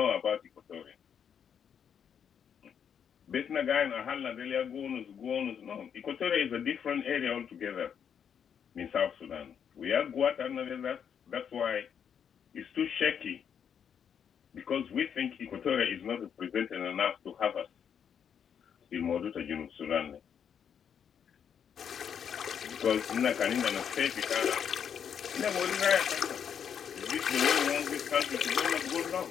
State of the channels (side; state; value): right; quieter; 7.9 dB